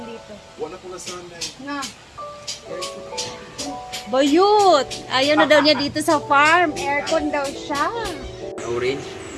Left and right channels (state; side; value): identical; both; correlation 1.00